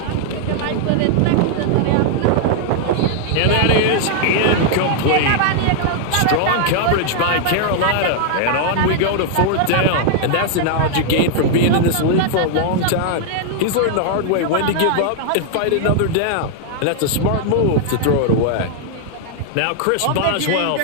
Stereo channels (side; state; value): both; different; correlation 0.00